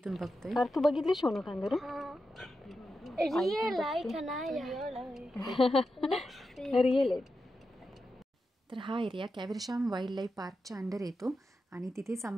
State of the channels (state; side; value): normal; both; correlation 0.89